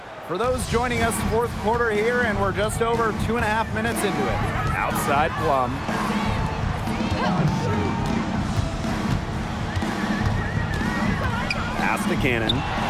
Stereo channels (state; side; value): identical; both; correlation 1.00